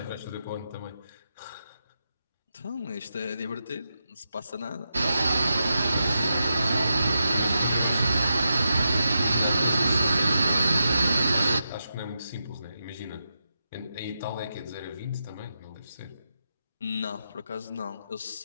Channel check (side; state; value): both; inverted; correlation -0.87